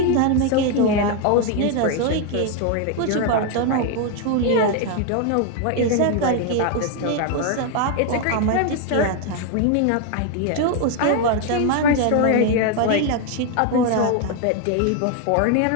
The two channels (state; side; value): different; both; correlation 0.01